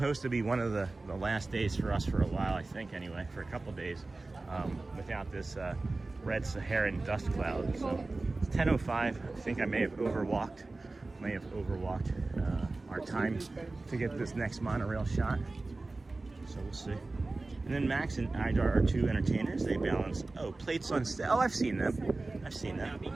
to be one of the last days for us for a while, I think, anyway, for a couple days, without this red Saharan dust cloud. So it's 10:05. I think I may have overwalked our time to get this next monorail shot. So we'll see. And then Max and Idar are two entertainers. They balance, plates on stage. Oh, I've seen them.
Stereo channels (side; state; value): left; quieter; 3.3 dB